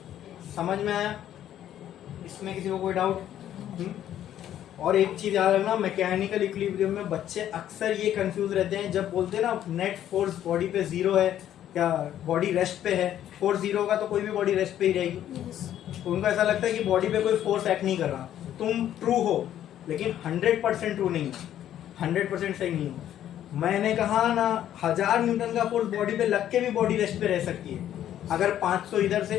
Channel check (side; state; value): right; quieter; 11.3 dB